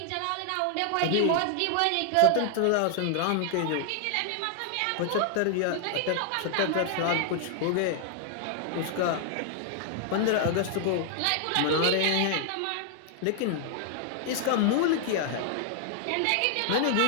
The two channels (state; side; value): different; both; correlation 0.00